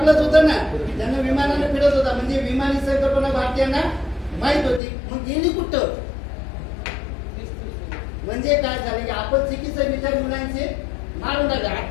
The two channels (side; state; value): right; drops out; at 4.8 s